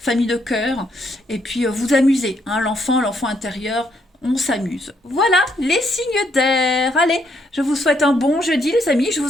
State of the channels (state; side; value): normal; both; correlation 0.74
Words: de cœur. Et puis, vous amusez, l'enfant intérieur, on s'amuse. Voilà, les signes d'air. Allez, je vous souhaite un bon jeudi, les amis, je